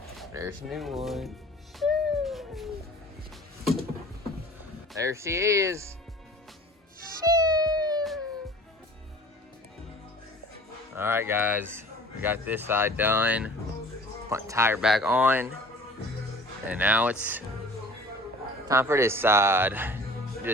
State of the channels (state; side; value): normal; both; correlation 0.45